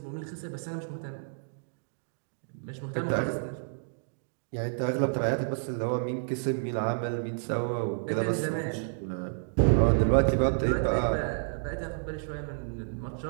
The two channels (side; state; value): left; silent; digital silence